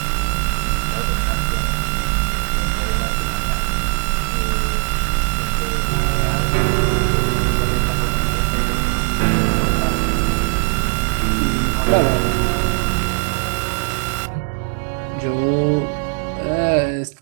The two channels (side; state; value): left; quieter; 32.9 dB